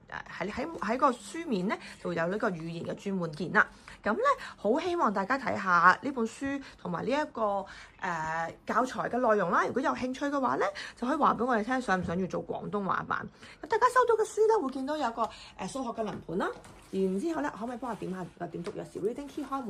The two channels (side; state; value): both; identical; correlation 1.00